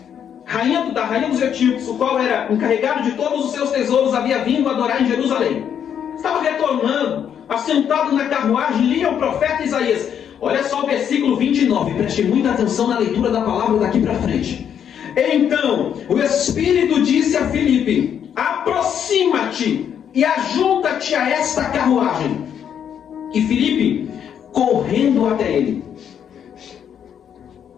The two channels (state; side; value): quieter; right; 8.6 dB